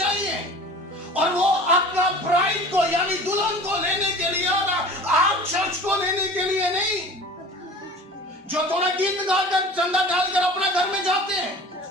और वो अपना ब्राइड को यानी दुल्हन को लेने के लिए आ रहा, आप चर्च को लेने के लिए नहीं। जो थोड़ा गीत गाकर चंदा डालकर अपना घर में जाते हैं,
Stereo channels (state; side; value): normal; both; correlation 0.41